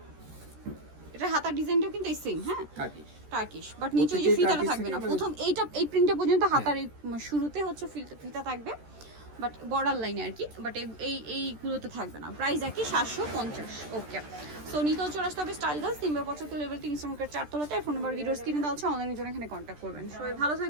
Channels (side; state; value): left; late; 13 ms